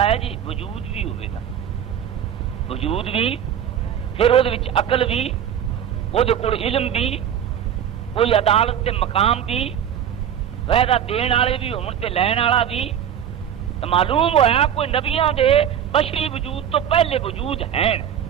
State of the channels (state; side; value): quieter; left; 9.3 dB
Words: ہے جی وجود بھی ہوئے گا، وجود بھی، پھر وہ عقل بھی، وہ علم بھی، کوئی عدالت تے مقام بھی، وعدہ دین والے بھی ہون تے لین والا بھی. تو معلوم ہویا کوئی نبیاں دے بشری وجود تو پہلے وجود ہیں،